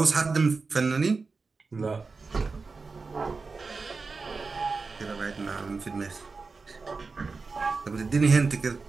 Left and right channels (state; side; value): quieter; left; 4.3 dB